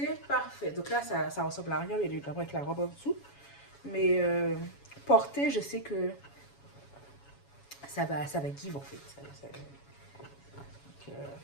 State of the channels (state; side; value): late; right; 7.2 ms